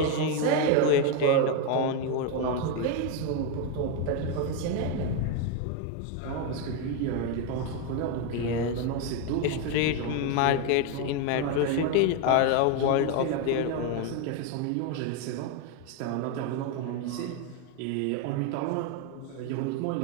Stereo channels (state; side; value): different; both; correlation 0.02